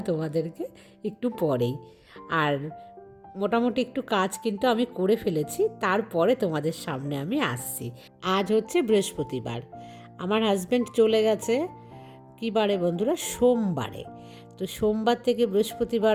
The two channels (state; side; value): identical; both; correlation 1.00